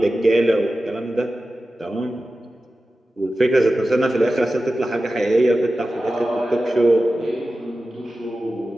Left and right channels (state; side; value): normal; both; correlation 0.94